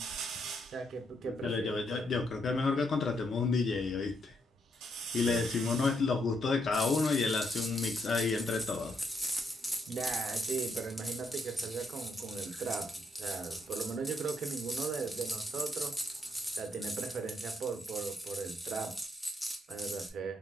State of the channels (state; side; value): normal; both; correlation 0.77